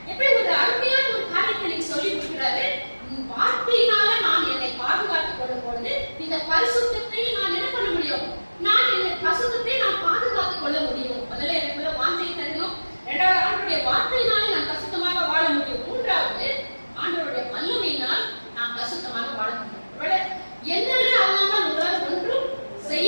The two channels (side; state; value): both; inverted; correlation -1.00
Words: எப்படி ஒரு அருமையான ஒரு காரியத்தை நீங்க சொல்லி கொடுக்கிறாரு. வார்த்தையினால நான் என்னை பாதுகாத்துக் கொள்ளும் பொழுது இந்த பரிசுத்தத்தை நான் என்ன பண்ண முடியும்? நான் இந்த பரிசுத்தத்தை நான் பாதுகாத்துக் கொள்ள முடியும். முதல்ல எனக்குள்ள வாஞ்சை தரணும். இரண்டாவது ஆண்டவருடைய வார்த்தையினாலே நான் பரிசுத்தமாக வாழ முடியும். மூன்றாவது ஆண்டவருடைய வல்லமையினால் நான் பரிசுத்தமாக வாழ முடியும். என்னென்ன அல்லாமல் உங்களால் ஒன்றும் செய்ய